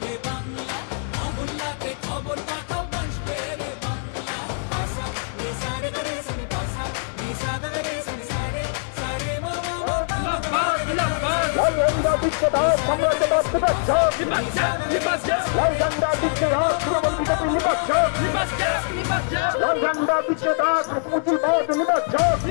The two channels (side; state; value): right; silent; digital silence